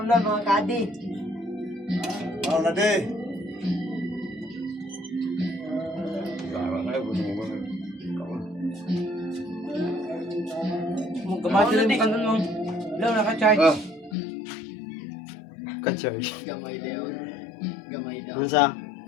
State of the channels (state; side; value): drops out; right; at 14.2 s